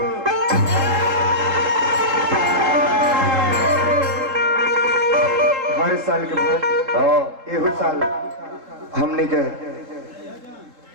साल के बाद एहू साल हमने के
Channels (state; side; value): late; left; 3.7 ms